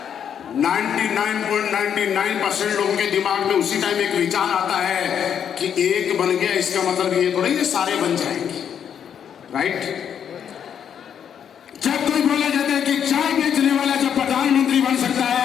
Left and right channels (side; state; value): right; quieter; 8.4 dB